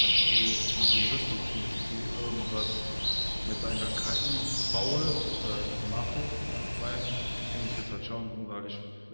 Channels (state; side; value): inverted; both; correlation -1.00